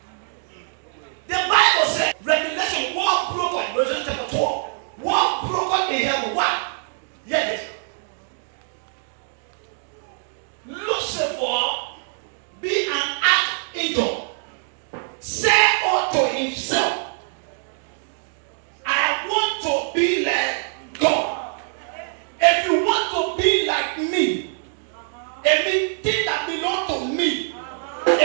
The Bible says, Revelation, war broken, Revelation chapter 12, war broken in heaven. What? Hear this.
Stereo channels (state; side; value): silent; left; 63 dB below the other